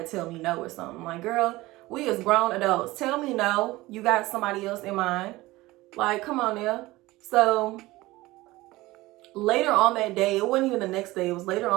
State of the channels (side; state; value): left; quieter; 19.2 dB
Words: tell me no or something. Like, girl, we as grown adults, tell me no. You got somebody else in mind. Like, come on now. So later on that day, it wasn't even the next day, it was later